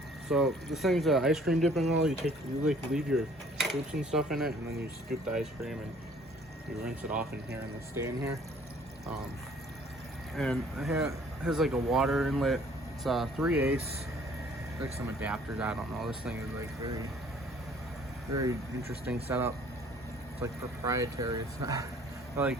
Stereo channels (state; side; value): normal; both; correlation 0.57